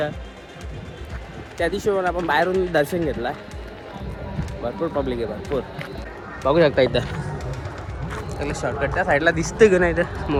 त्या दिवशी पण आपण बाहेरून दर्शन घेतलं. भरपूर पब्लिक आहे, भरपूर. बघू शकता इथं त्याला शॉर्टकट त्या साईडला दिसतं की नाही इथं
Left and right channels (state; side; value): identical; both; correlation 1.00